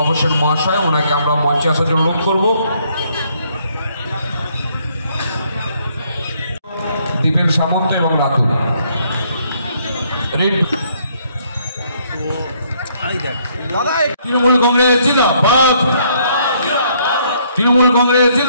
হোসেন মহাশয়। ওনাকে আমরা মঞ্চে আসার জন্য অনুরোধ করব। দীপেন সামন্ত এবং রাতুল তৃণমূল কংগ্রেস জিন্দাবাদ, তৃণমূল কংগ্রেস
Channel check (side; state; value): both; inverted; correlation -0.68